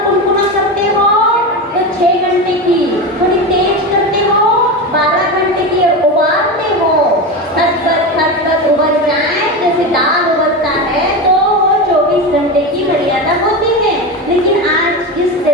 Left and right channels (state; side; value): normal; both; correlation 0.20